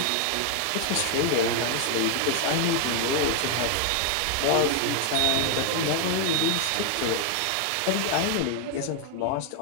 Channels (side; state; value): both; different; correlation 0.00